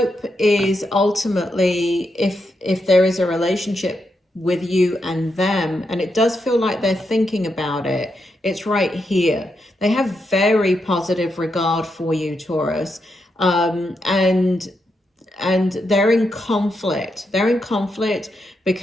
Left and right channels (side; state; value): both; normal; correlation 0.83